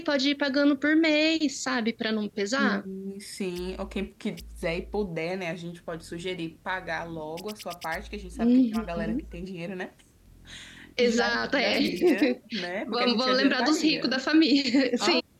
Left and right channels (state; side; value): identical; both; correlation 1.00